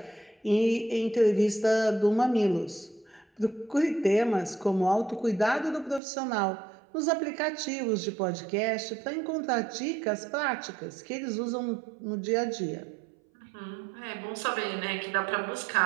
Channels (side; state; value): left; drops out; at 6.0 s